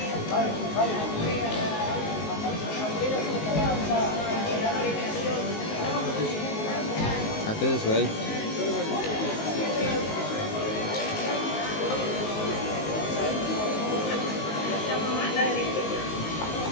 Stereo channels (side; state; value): right; late; 19 ms